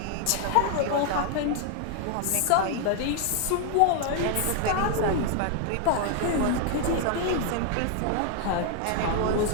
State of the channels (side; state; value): both; different; correlation 0.00